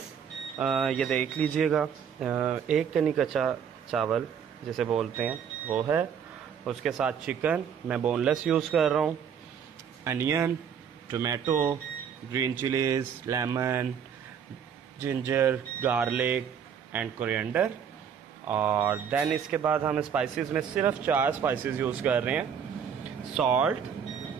ये देख लीजिएगा, एक कनी कच्चा चावल जिसे बोलते हैं वो है। उसके साथ चिकन मैं बोनलेस यूज़ कर रहा हूँ, onion, tomato, green chillies, lemon, ginger, garlic and coriander. और देन इसके बाद हम स्पाइसेस में सिर्फ 4 स्पाइसेस यूज़ कर रहे हैं। Salt,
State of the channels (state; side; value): quieter; left; 7.7 dB